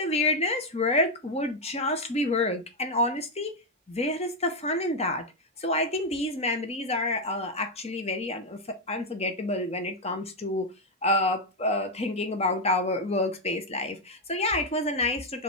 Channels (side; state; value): both; normal; correlation 0.03